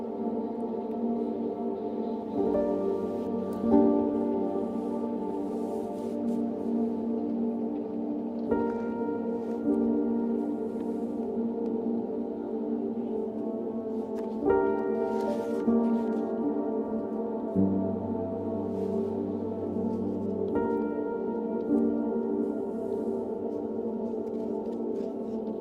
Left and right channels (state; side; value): identical; both; correlation 1.00